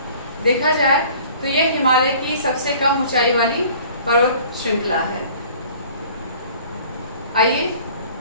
देखा जाए तो यह हिमालय की सबसे कम ऊंचाई वाली पर्वत श्रृंखला है। आइए,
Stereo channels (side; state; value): both; inverted; correlation -0.49